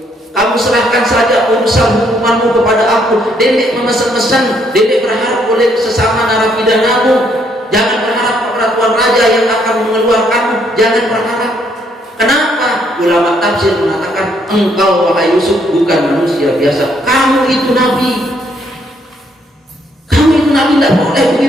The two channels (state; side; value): normal; both; correlation 0.70